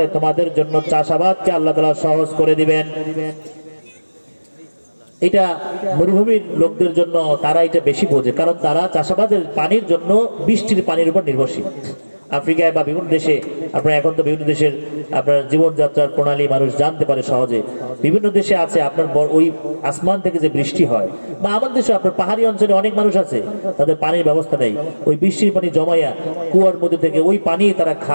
তোমাদের জন্য চাষাবাদকে আল্লাহ তাআলা সহজ করে দিবেন। এটা মরুভূমির লোকদের জন্য তারা এটা বেশি বোঝে, কারণ তারা চাষাবাদের পানির জন্য বৃষ্টির পানির উপর নির্ভরশীল। আফ্রিকায় বা বিভিন্ন দেশে আপনার এখন তো বিভিন্ন দেশের আপনার জীবনযাত্রার প্রণালী মানুষ জানতে পারে সহজে। বিভিন্ন দেশে আছে আপনার ওই আসমান থেকে যে বৃষ্টি হয়, বা আমাদের দেশে আপনার পাহাড়ি অঞ্চলে অনেক মানুষ আছে তাদের পানির ব্যবস্থা নেই, ওই বৃষ্টির পানি জমাইয়া কুয়ার মধ্যে থেকে ওই পানি তারা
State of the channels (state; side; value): inverted; both; correlation -1.00